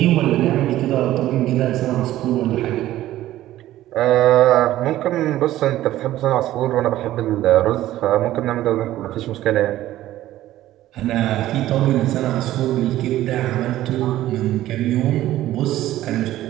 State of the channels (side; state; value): left; quieter; 14.4 dB